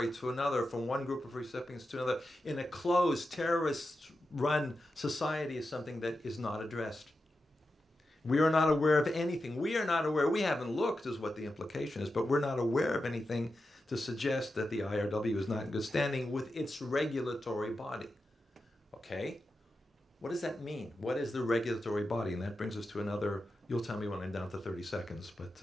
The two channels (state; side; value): normal; both; correlation 0.90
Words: to another, from one group of recipients to another, in a closed, terrorist-run society is something that is not addressed. We are not aware of anything. We are not aware, we haven't looked is what the implication is, but we're not aware of anything to suggest that the IRW is not in good standing with its regulatory body. Okay? What does that mean? What is the regulatory body? And that brings us to another, you'll tell me when I'm down to 30 seconds, but